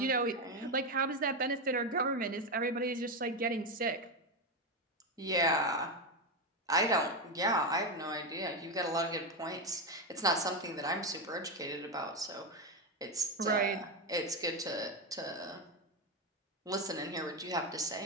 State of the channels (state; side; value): normal; both; correlation 0.10